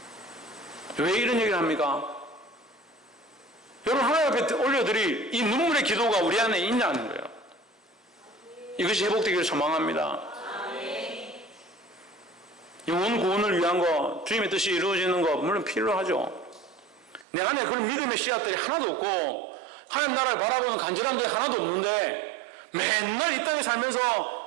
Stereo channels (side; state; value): left; drops out; at 17.2 s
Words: 왜 이런 얘기를 합니까? 여러분 하나님 앞에 올려드릴 이 눈물의 기도가 우리 안에 있냐는 거예요. 이것이 회복되기를 소망합니다. 영혼 구원을 위한 거, 주님의 뜻이 이루어지는 거 물론 필요하죠. 내 안에 그런 믿음의 씨앗들이 하나도 없고 하나님 나라를 바라보는 간절함들이 하나도 없는데 맨날 이 땅에 살면서